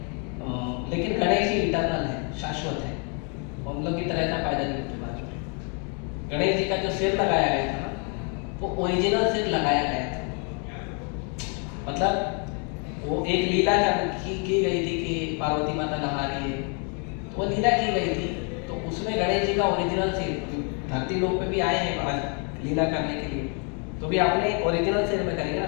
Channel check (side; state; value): right; quieter; 37.8 dB